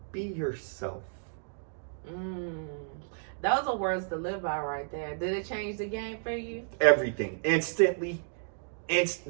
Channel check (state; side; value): silent; left; digital silence